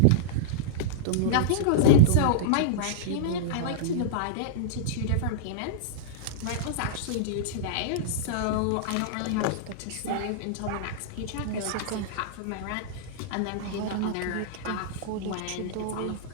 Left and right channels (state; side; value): different; both; correlation -0.02